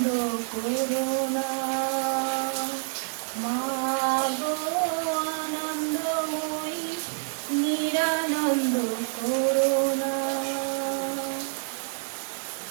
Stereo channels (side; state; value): left; silent; digital silence